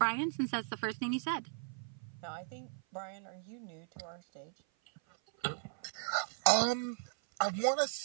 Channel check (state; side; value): silent; left; 53 dB below the other